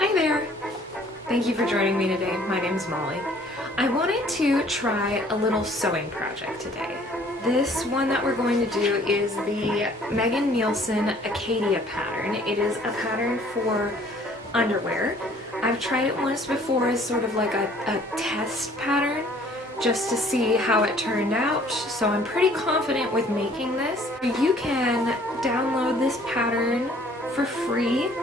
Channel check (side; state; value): both; normal; correlation 0.57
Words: there! Thank you for joining me today. My name's Molly. I wanted to try a little sewing project today. This one that we're going to do is the Megan Nielsen Acacia pattern. It is a pattern for underwear. I've tried it once before as sort of like a test pattern just to see how it turned out, so I'm pretty confident with making this. You can download this pattern for free